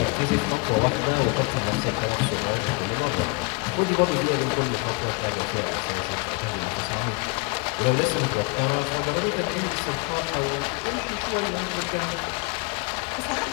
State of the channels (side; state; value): right; quieter; 29.7 dB